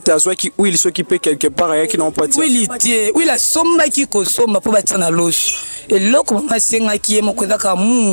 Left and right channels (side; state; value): both; inverted; correlation -1.00